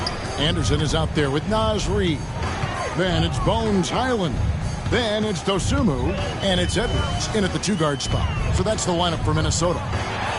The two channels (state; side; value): identical; both; correlation 1.00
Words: Anderson is out there with Naz Reid. Then it's Bones Highland. Then it's Dosumu. And it's Edwards in at the 2-guard spot. So that's the lineup for Minnesota.